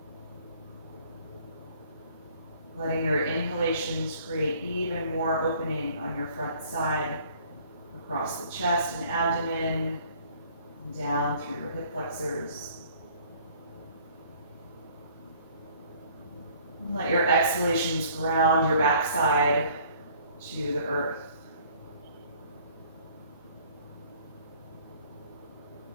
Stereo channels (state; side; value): inverted; both; correlation -0.56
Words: Letting your inhalations create even more opening on your front side, across the chest and abdomen, and down through your hip flexors. And let your exhalations ground your backside to the earth.